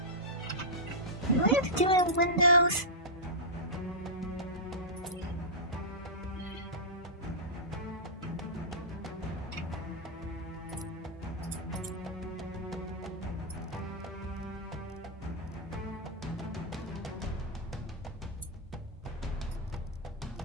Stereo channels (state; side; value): normal; both; correlation -0.12